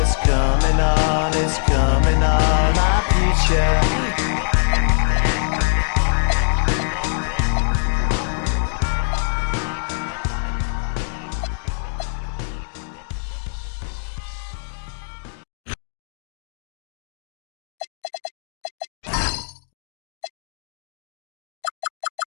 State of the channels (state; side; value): silent; right; digital silence